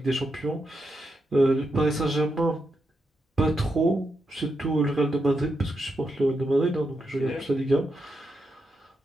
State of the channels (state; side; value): normal; both; correlation 0.84